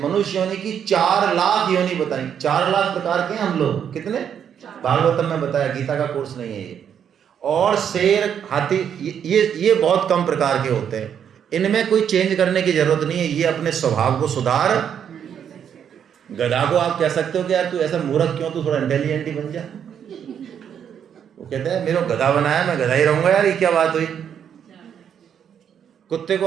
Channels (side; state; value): left; quieter; 8.4 dB